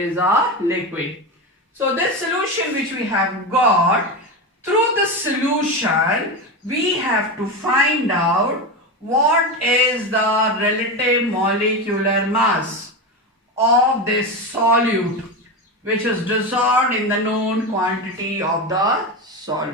a liquid. So this solution which we have got, through the solution we have to find out what is the relative molecular mass of this solute which is dissolved in the known quantity of the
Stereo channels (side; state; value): both; normal; correlation 0.18